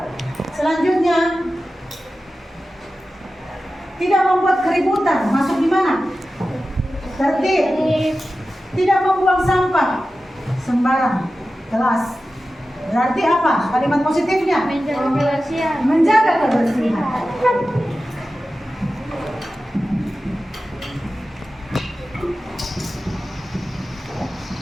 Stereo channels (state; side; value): normal; both; correlation 0.94